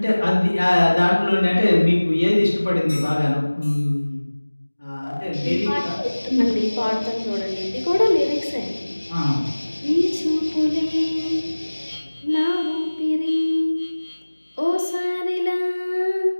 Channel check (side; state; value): both; inverted; correlation -1.00